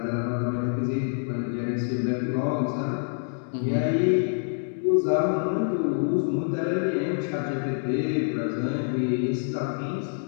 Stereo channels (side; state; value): right; silent; digital silence